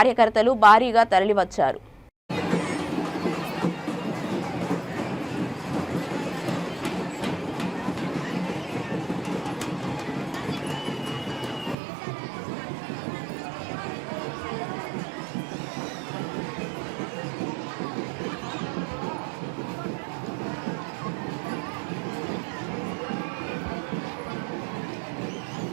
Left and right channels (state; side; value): drops out; left; at 11.8 s